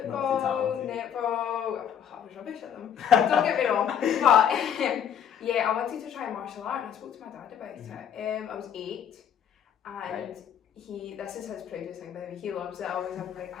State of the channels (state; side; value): quieter; right; 8.8 dB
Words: netball, I was rubbish at them, don't get me wrong, but I wanted to try martial art, and I spoke to my dad about it. I was 8, and this is his proudest thing, by the way. He loves it. I always have to bring